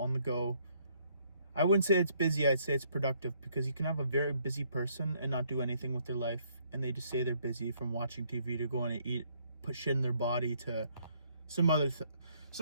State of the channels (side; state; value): both; inverted; correlation -0.68